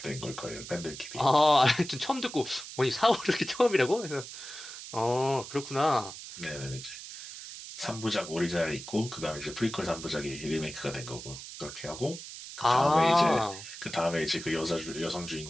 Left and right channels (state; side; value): noise; right; hiss, 12 dB below the sound